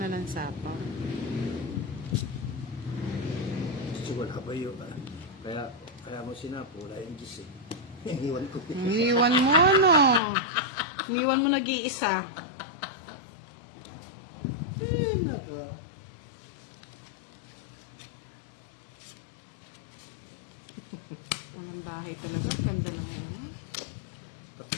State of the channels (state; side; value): drops out; right; at 10.2 s